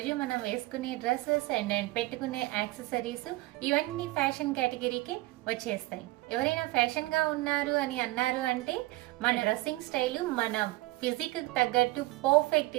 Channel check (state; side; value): quieter; left; 19.8 dB